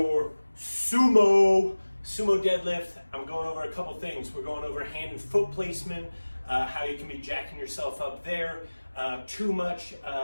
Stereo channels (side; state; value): both; inverted; correlation -1.00